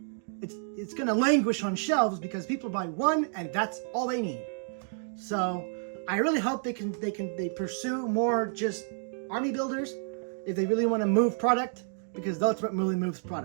it's gonna languish on shelves because people buy one and that's all they need. So I really hope they pursue more just army builders if they really want to move product, because that's what really moves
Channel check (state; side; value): silent; left; digital silence